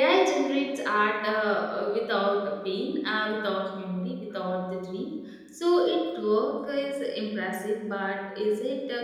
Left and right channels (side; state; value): both; identical; correlation 1.00